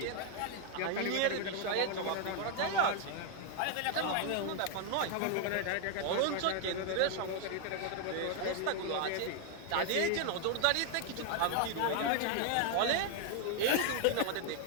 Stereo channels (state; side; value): different; both; correlation 0.01